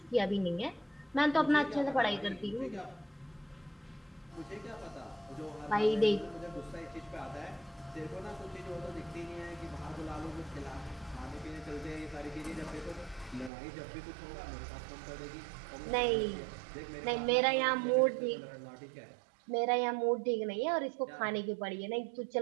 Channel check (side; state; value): left; drops out; at 13.5 s